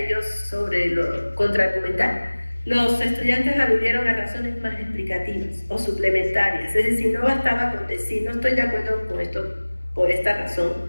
sobre lo contraargumental, los estudiantes aludieron a razones más explicativas o suplementarias, es decir, no bastaba con decir no estoy de acuerdo con esto por esta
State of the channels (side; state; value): both; inverted; correlation -1.00